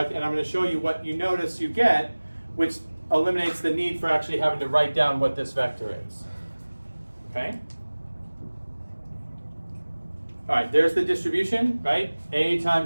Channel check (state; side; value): inverted; both; correlation -1.00